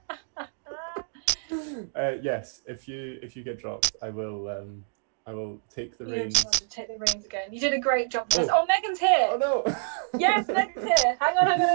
Yes, if you get dropped, I will take the reins. You take the reins again. You did a great job. Oh, Megan's here. Oh no. Yes, Megan's here. Hang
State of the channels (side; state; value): left; silent; digital silence